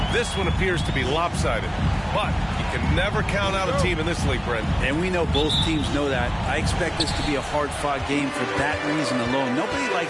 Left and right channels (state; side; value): identical; both; correlation 1.00